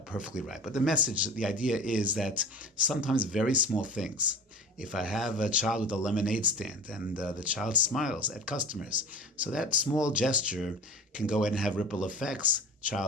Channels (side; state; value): both; normal; correlation 0.36